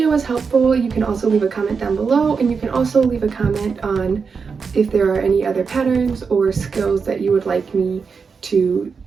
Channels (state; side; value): quieter; left; 5.4 dB